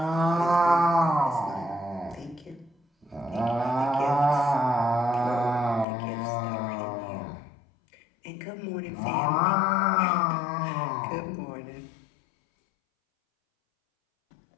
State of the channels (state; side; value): drops out; right; at 5.9 s